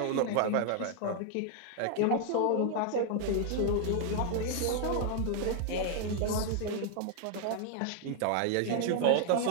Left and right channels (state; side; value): different; both; correlation 0.00